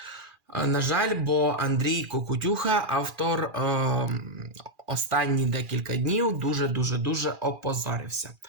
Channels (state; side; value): late; left; 2.4 ms